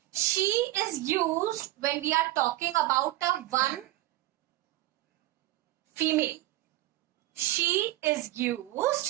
is used when we are talking about a one female. She is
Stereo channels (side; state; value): left; quieter; 16.7 dB